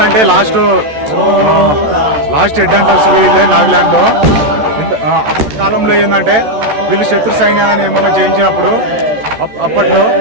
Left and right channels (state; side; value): late; left; 14 ms